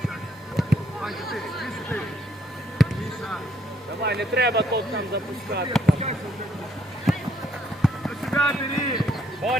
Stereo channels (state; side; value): normal; both; correlation 0.69